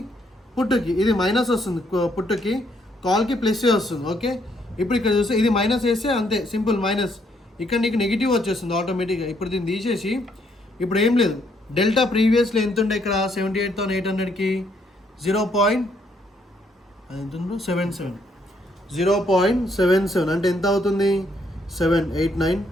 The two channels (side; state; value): both; normal; correlation 0.71